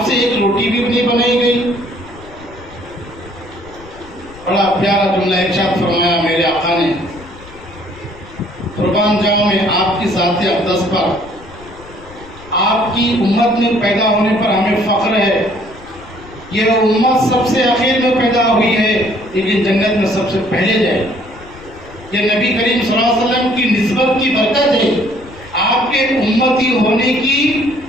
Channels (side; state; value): left; noise; rumble, 20 dB below the sound